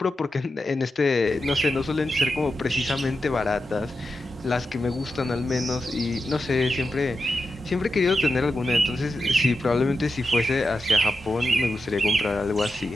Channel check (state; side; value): normal; both; correlation 0.89